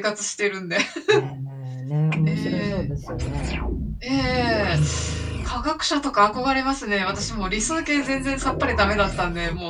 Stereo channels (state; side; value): identical; both; correlation 1.00